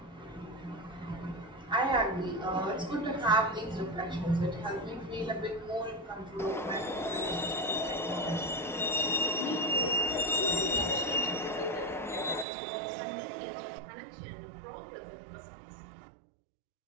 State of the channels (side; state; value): left; drops out; at 12.5 s